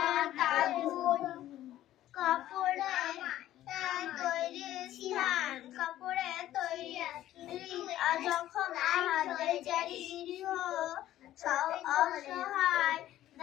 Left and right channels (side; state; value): right; quieter; 13.4 dB